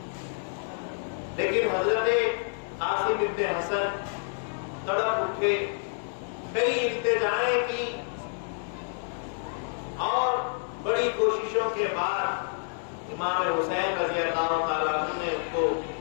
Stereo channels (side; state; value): right; silent; 59 dB below the other